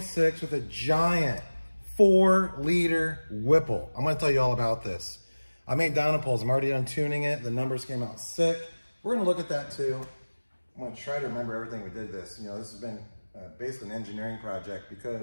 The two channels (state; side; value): inverted; both; correlation -1.00